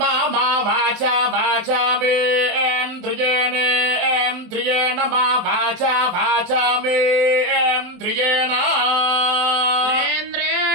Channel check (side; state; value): left; late; 23 ms